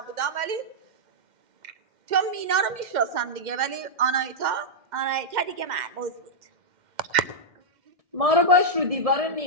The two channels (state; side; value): late; left; 2.1 ms